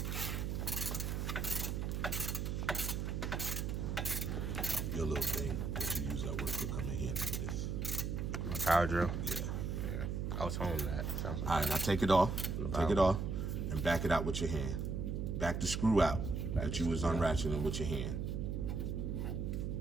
Your little thing that you use at work will come in handy for this. My power drill. Yeah. Yeah. I was home that. Sounds All right, now take it off. Take it off and back it out with your hand. Back the screw out that you was unratcheting with your hand.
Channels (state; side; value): noise; right; hum, 1 dB below the sound